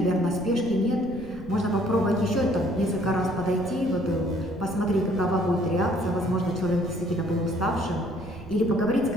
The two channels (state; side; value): noise; right; rumble, 16 dB below the sound